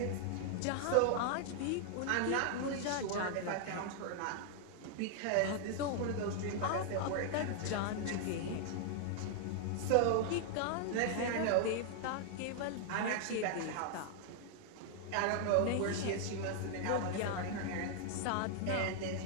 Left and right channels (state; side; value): different; both; correlation -0.01